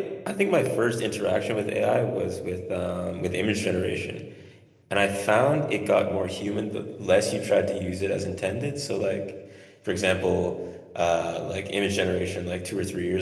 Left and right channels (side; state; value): both; identical; correlation 1.00